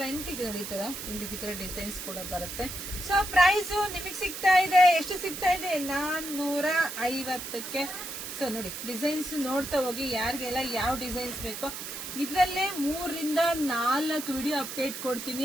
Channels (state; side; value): noise; right; hiss, 8 dB below the sound